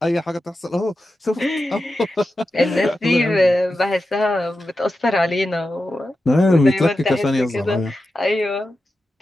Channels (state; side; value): normal; both; correlation 0.91